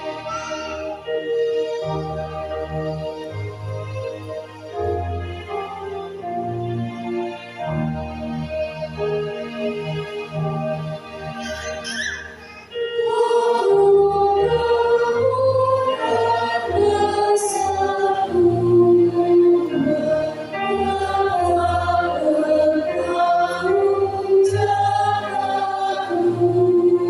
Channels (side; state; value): both; identical; correlation 1.00